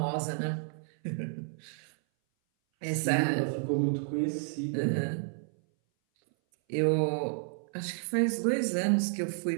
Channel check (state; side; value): silent; left; 57 dB below the other